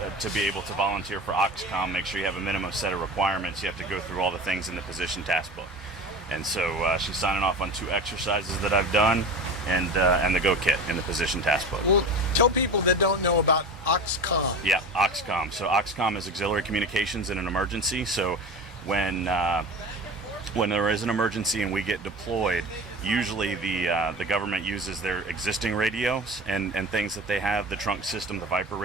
to be able to volunteer for AUXCOMM, make sure you have a minimum set of requirements. You have to go through all the things in the position task book. And so she's signing off on 2 exercises that I've done and the Go Kit in the position task book. Well, tell people that don't know about AUXCOMM. Yeah, AUXCOMM. So AUXCOMM is auxiliary communications in an emergency. So when there is an emergency and we get deployed, usually the government uses their existing radios and things that they have, the trunk system, the Viper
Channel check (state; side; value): normal; both; correlation 0.33